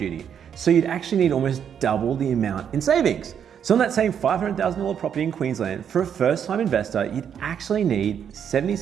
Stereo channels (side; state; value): left; quieter; 8.3 dB